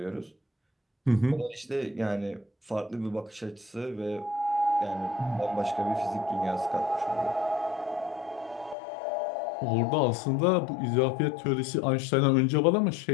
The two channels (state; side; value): drops out; right; at 8.8 s